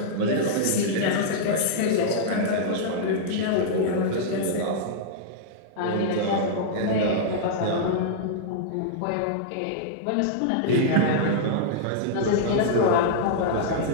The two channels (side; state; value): both; different; correlation -0.02